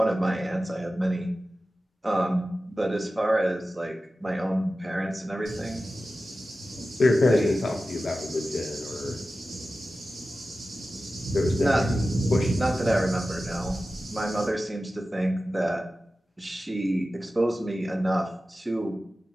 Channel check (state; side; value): normal; both; correlation 0.94